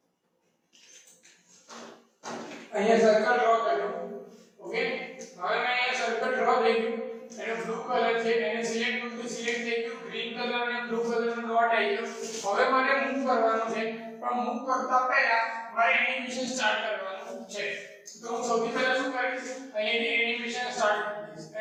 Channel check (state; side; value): identical; both; correlation 1.00